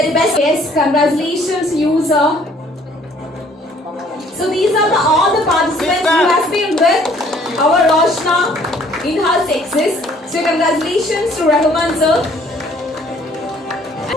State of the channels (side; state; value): both; normal; correlation 0.59